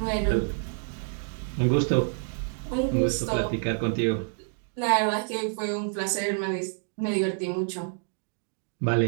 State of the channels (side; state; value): left; silent; 56 dB below the other